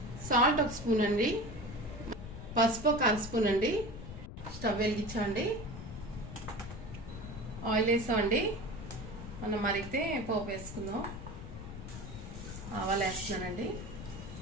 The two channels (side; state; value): left; noise; rumble, 10 dB below the sound